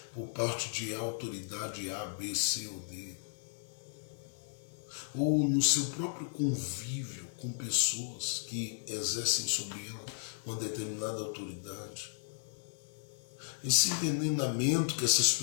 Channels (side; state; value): right; silent; digital silence